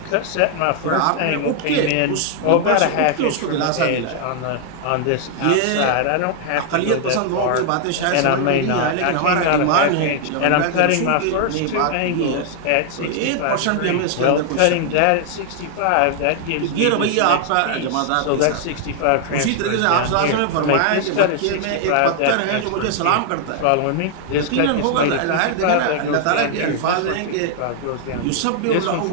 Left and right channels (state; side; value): different; both; correlation 0.00